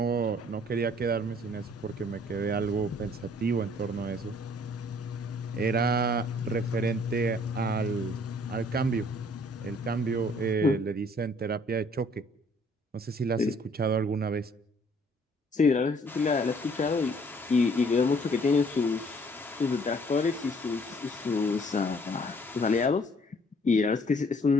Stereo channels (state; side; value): normal; both; correlation 0.60